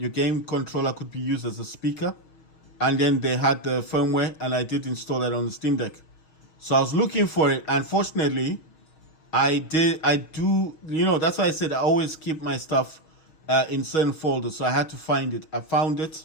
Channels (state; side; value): late; right; 6.3 ms